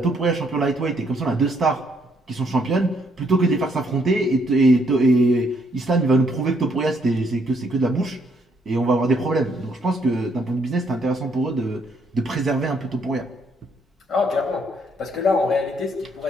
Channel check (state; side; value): normal; both; correlation 0.71